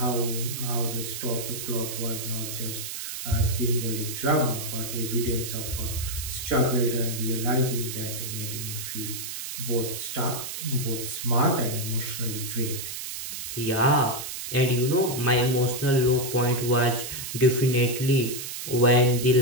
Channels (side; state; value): right; noise; hiss, 7 dB below the sound